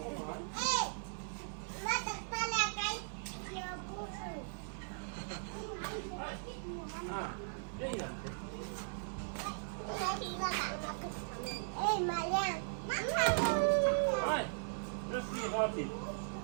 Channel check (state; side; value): silent; left; 52 dB below the other